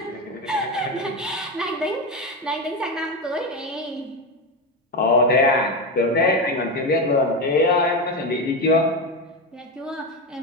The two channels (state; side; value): normal; both; correlation 0.15